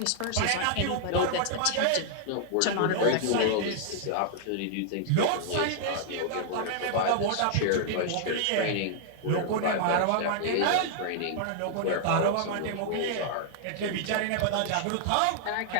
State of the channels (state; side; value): different; both; correlation -0.01